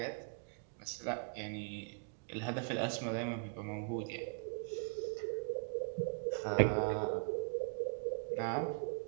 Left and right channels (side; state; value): left; quieter; 39.5 dB